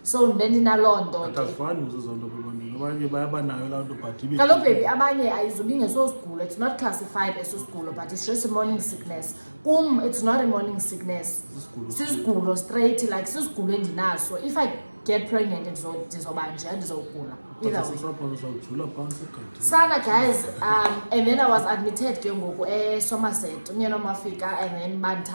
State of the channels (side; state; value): both; inverted; correlation -1.00